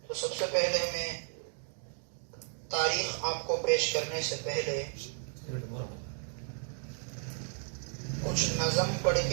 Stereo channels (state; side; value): silent; left; 55 dB below the other